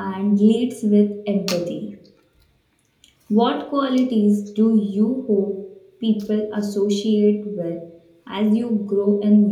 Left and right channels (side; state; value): both; identical; correlation 1.00